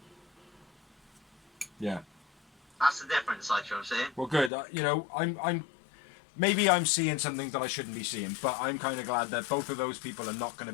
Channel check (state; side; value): drops out; right; at 4.5 s